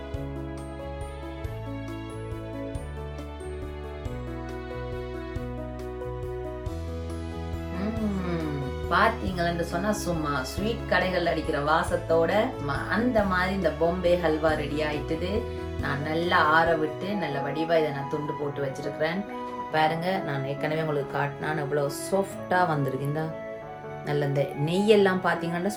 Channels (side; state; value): both; identical; correlation 1.00